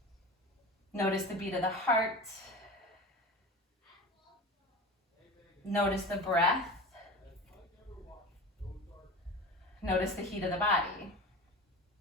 Notice the beat of the heart. Notice the breath. Notice the heat of the body.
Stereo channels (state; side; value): normal; both; correlation 0.32